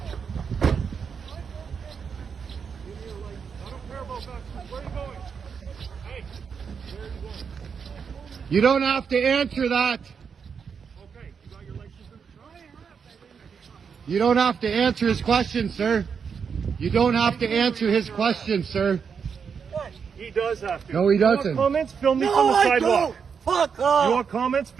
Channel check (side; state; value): left; quieter; 6.4 dB